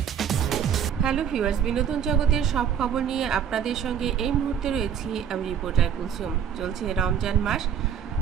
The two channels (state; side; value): quieter; left; 8.4 dB